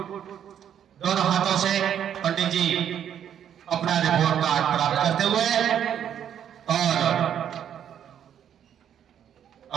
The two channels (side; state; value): left; quieter; 9.4 dB